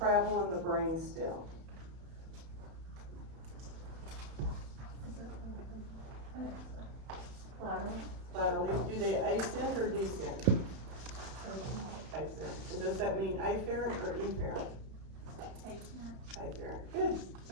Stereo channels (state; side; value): late; left; 31 ms